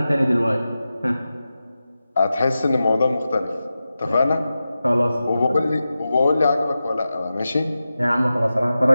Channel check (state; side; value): inverted; both; correlation -0.93